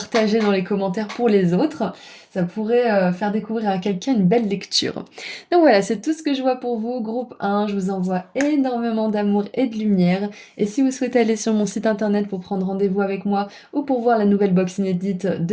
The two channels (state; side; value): identical; both; correlation 1.00